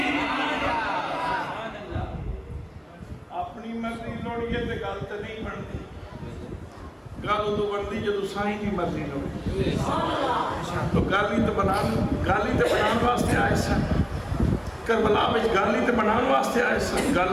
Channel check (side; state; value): both; identical; correlation 1.00